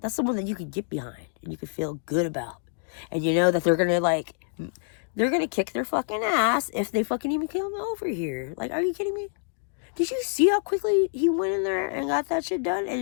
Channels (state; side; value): silent; right; digital silence